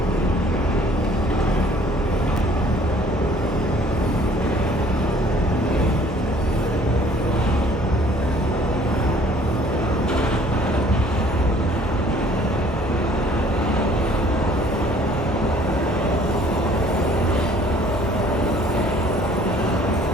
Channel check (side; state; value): both; normal; correlation 0.56